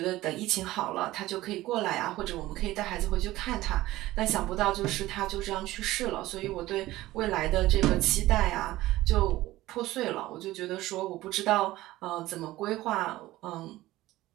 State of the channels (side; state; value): left; quieter; 16.8 dB